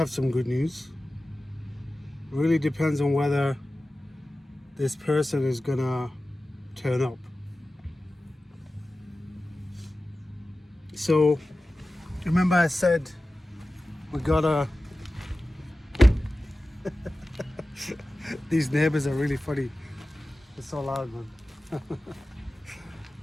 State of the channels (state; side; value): normal; both; correlation 0.95